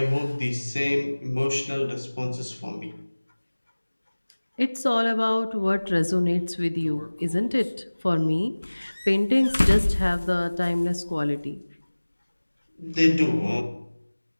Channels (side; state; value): both; inverted; correlation -1.00